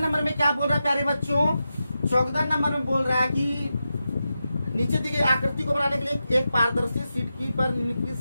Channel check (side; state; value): both; inverted; correlation -0.90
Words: में क्या बोल रहा है प्यारे बच्चों? 14 नंबर में बोल रहा है कि नीचे दी गई आकृति को बनाने के लिए एक पारदर्शी सिटकी पर